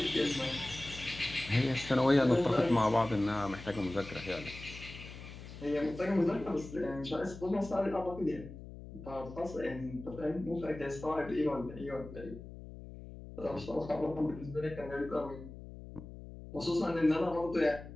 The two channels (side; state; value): left; noise; hum, 13 dB below the sound